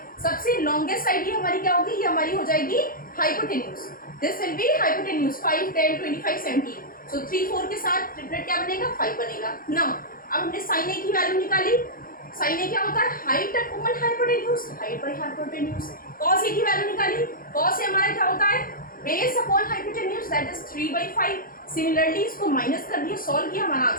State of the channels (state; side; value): late; right; 0.42 ms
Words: सबसे लॉन्गेस्ट साइड ये हमारी क्या होगी, ये हमारी हो जाएगी hypotenuse. This will be hypotenuse 5 10 25 17। सो 3 4 के साथ ट्रिपलेट क्या बनेगा, 5 बनेगा ना। अब हमने साइन ए की वैल्यू निकाली, साइन ए क्या होता है, height upon hypotenuse, height by hypotenuse. Cos A की वैल्यू निकाली, कॉस ए हमारा क्या होता है, base upon hypotenuse, that is 3/5। Similarly इसको माइनस कर दिया, सॉल्व किया, हमारा